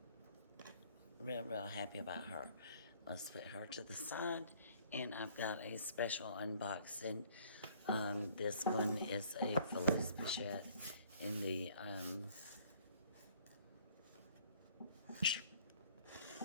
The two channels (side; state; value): both; inverted; correlation -0.57